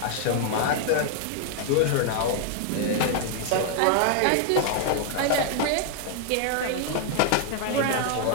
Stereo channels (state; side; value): different; both; correlation 0.00